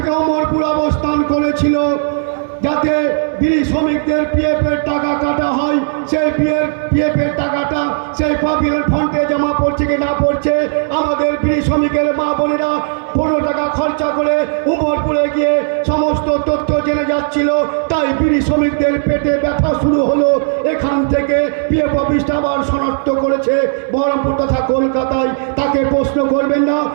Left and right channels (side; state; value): left; silent; digital silence